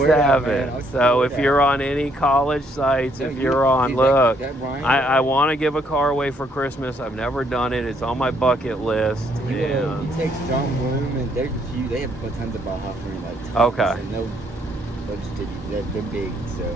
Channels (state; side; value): normal; both; correlation 0.69